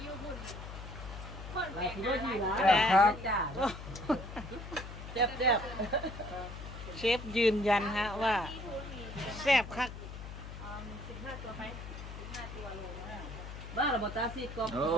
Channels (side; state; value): left; noise; hum, 10 dB below the sound